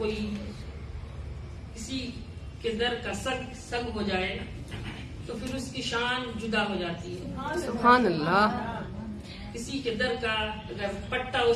کسی کے در کا سگ ہو جائے تو پھر اس کی شان جدا ہو جاتی ہے. سبحان اللہ. کسی کے در کا اگر پٹا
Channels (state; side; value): identical; both; correlation 1.00